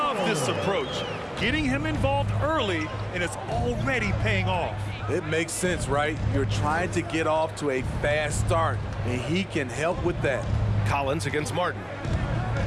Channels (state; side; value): identical; both; correlation 1.00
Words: this approach. Getting him involved early, and it's already paying off. It makes sense, right? You're trying to get off to a fast start, and he can help with that. Collins against Martin.